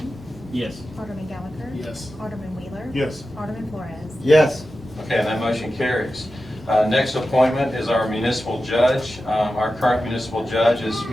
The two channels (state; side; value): normal; both; correlation 0.92